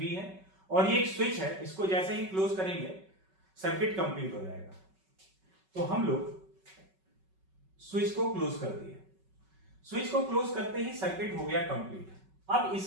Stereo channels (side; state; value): left; late; 5.3 ms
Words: है, और ये एक स्विच है, इसको जैसे ही क्लोज करेंगे सर्किट कंप्लीट हो जाएगा। तो हम लोग स्विच को क्लोज कर दिए, स्विच को क्लोज करते ही सर्किट हो गया कंप्लीट। अब